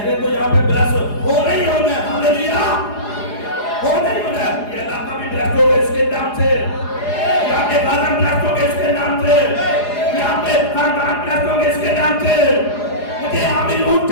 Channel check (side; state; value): right; late; 4.8 ms